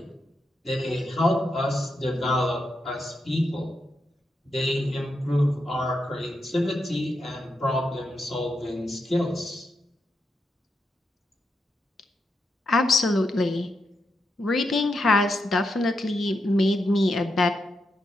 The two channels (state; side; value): normal; both; correlation 0.84